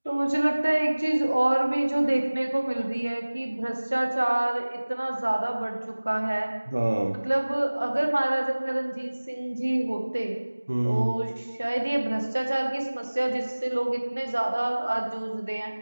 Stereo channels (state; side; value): inverted; both; correlation -1.00